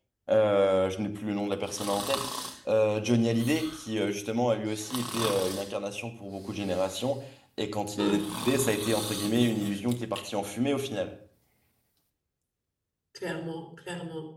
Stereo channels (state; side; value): identical; both; correlation 1.00